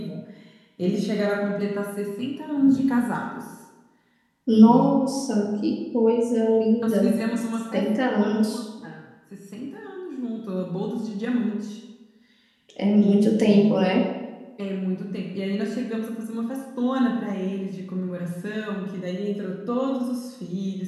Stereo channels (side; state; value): both; identical; correlation 1.00